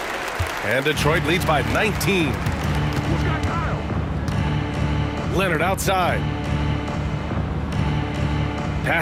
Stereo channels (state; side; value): identical; both; correlation 1.00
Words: And Detroit leads by 19. Leonard outside.